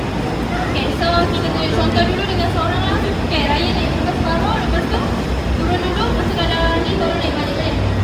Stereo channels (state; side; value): identical; both; correlation 1.00